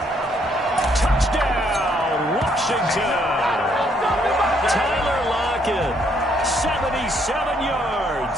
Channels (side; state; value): both; normal; correlation 0.70